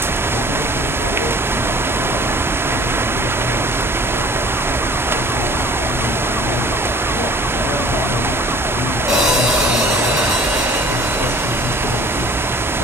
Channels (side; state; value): both; normal; correlation 0.49